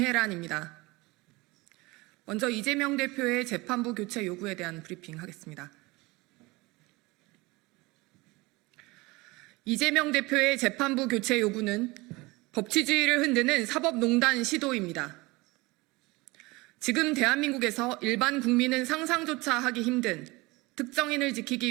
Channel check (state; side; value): quieter; left; 23.0 dB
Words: 먼저 이재명 대표의 재판부 교체 요구에 대한 브리핑 하겠습니다. 이재명 대표의 재판부 교체 요구는 법치주의를 흔드는 사법농단 시도입니다. 지금 대한민국에서 일반 국민은 상상조차 하기 힘든 특정인을